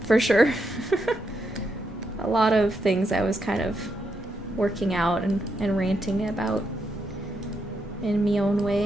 for sure. A lot of things I was kind of working out and ranting about in my own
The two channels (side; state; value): both; normal; correlation 0.81